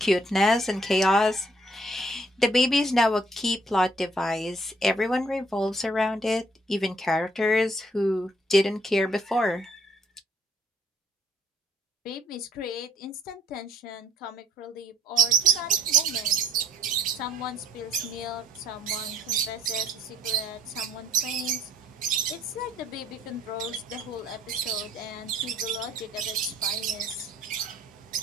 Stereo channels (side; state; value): both; normal; correlation 0.64